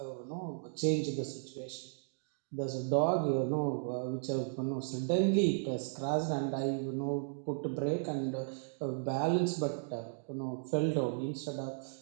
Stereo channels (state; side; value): silent; left; digital silence